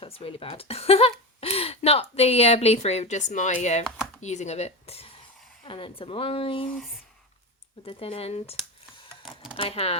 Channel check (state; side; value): normal; both; correlation 0.21